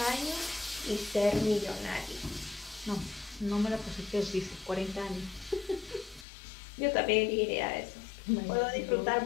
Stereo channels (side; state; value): right; drops out; at 6.2 s